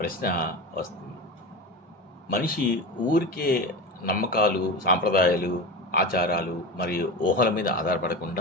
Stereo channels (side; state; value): both; normal; correlation 0.26